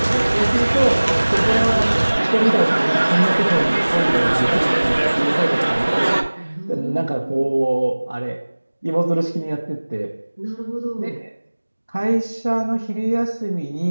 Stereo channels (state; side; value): inverted; both; correlation -1.00